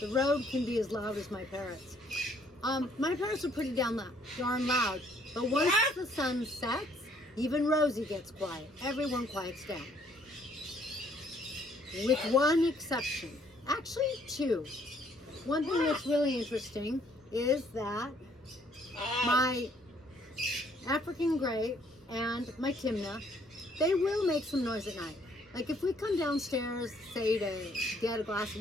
the road can be as loud as my parrots. My parrots are pretty darn loud, but once the sun sets, even Rosie gets quiet. Everyone quiets down. With one exception. Actually, 2. One thing that's really interesting is that my African Grey and my Timna, they will make some noise at night. Like if we come downstairs, say to get a glass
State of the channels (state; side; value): normal; both; correlation 0.65